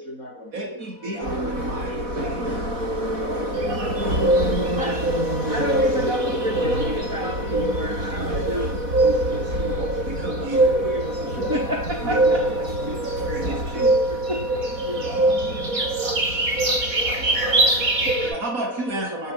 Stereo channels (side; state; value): left; late; 4.1 ms